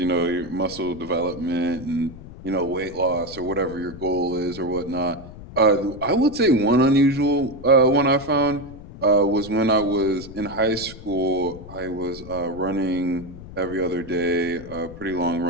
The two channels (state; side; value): noise; left; rumble, 15 dB below the sound